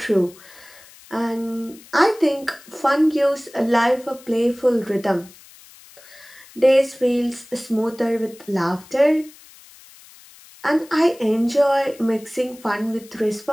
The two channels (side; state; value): left; noise; hiss, 23 dB below the sound